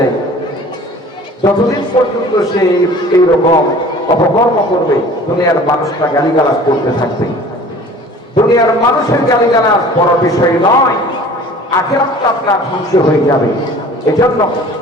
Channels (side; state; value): both; normal; correlation 0.46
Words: যতদিন পর্যন্ত সে এইরকম অপকর্ম করবে, দুনিয়ার মানুষরা গালিগালাজ করতে থাকবে। দুনিয়ার মানুষের গালিগালাজ বড় বিষয় নয়, আখিরাতটা আপনার ধ্বংস হয়ে যাবে। এজন্য